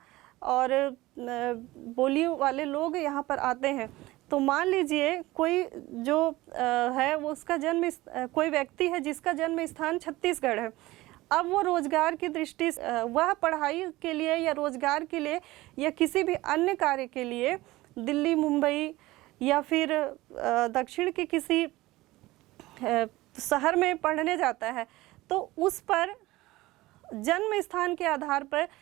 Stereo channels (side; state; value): left; quieter; 18.8 dB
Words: और बोली वाले लोग यहाँ पर आते हैं। तो मान लीजिए कोई जो है वो उसका कोई व्यक्ति है जिसका जन्म स्थान छत्तीसगढ़ है। अब वो रोजगार की दृष्टि से, वह पढ़ाई के लिए या रोजगार के लिए या किसी भी अन्य कार्य के लिए दिल्ली, मुंबई या फिर दक्षिण के किसी शहर में पढ़ने जाता है, तो उस पर जन्म स्थान के आधार पर